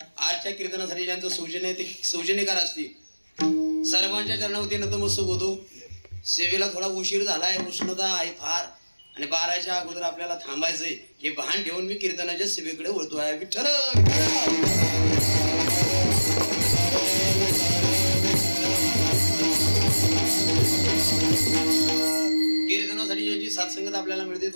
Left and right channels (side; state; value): both; inverted; correlation -1.00